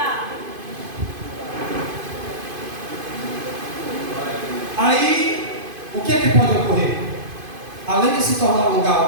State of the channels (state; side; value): late; left; 2.5 ms